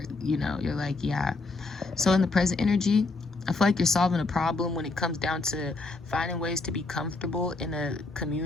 you're like, yeah. So in the present energy, I feel like you're solving a problem when it comes down to finding ways to be comfortable in a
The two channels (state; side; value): quieter; right; 3.4 dB